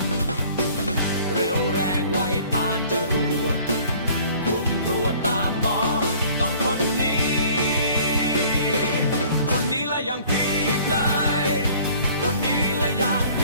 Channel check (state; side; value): inverted; both; correlation -0.52